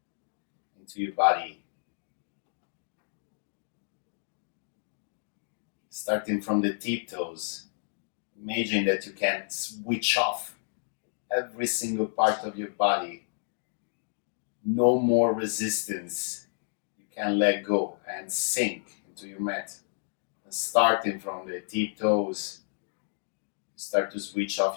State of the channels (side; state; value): right; silent; digital silence